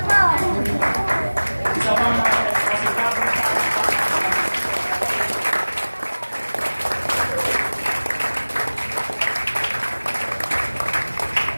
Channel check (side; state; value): both; inverted; correlation -1.00